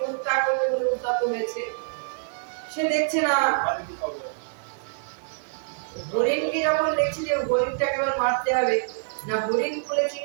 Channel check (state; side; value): silent; left; digital silence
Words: হত্যা করবে বলে উদ্যত হয়েছে, সে দেখছে না, হরিণকে যখন দেখছে যে হরিণটাকে এবার মারতে হবে, না হরিণ বলে